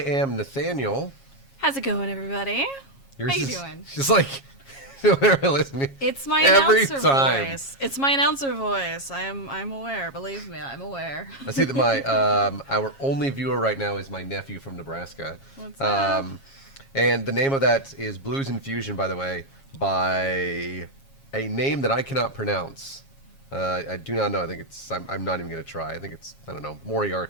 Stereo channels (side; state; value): right; late; 7.3 ms